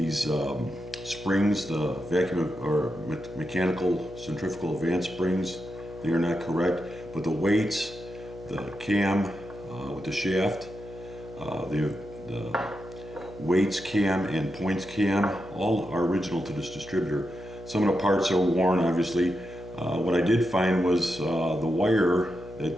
springs, the vacuum or mechanical centrifugal advance springs. They are not correct, but the weights, the cam with the shaft, the weights cam and points cam, all are original to this distributor. Some of the parts are worn, obviously. What I did find was the wire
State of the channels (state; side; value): noise; left; hum, 16 dB below the sound